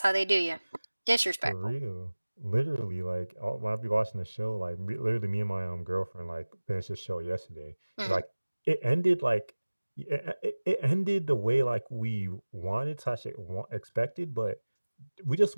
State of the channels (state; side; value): inverted; both; correlation -1.00